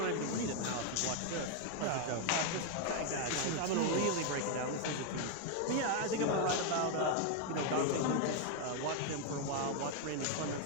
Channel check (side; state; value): both; different; correlation 0.01